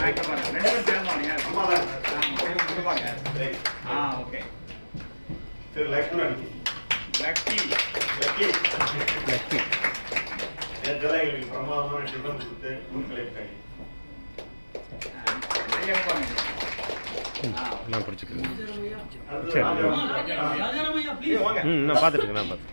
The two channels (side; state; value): both; inverted; correlation -1.00